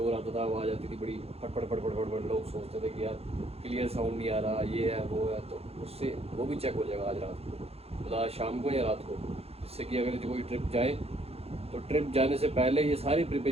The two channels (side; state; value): left; late; 0.29 ms